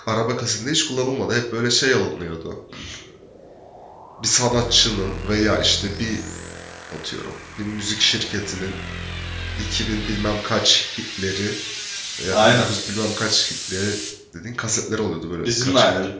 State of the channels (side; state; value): both; identical; correlation 1.00